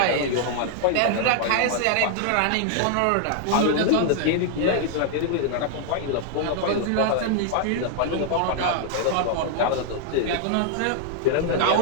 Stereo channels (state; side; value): different; both; correlation -0.01